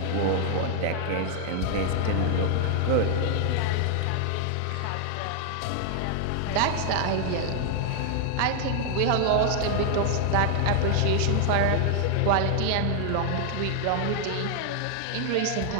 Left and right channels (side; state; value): both; different; correlation 0.00